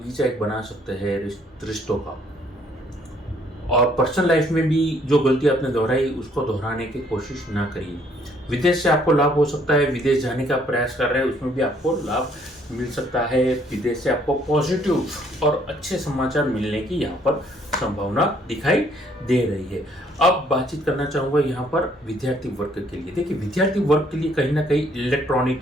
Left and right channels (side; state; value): both; normal; correlation 0.65